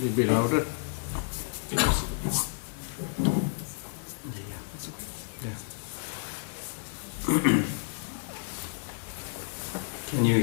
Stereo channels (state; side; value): silent; right; digital silence